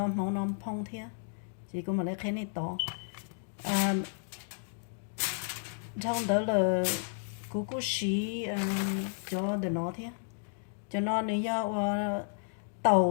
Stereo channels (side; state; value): right; silent; digital silence